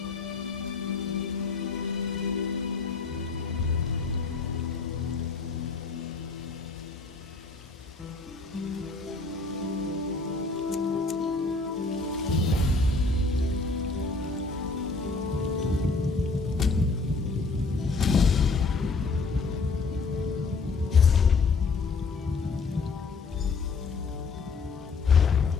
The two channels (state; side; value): quieter; right; 4.2 dB